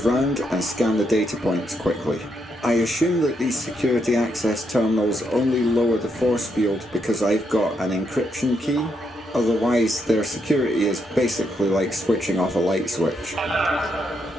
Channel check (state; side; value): normal; both; correlation 0.79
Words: round and scan the data points quickly. I assume that these security access terminals only lower the force field because I've got an encryption key. Otherwise, their security is basically like switching off a light switch. Alert.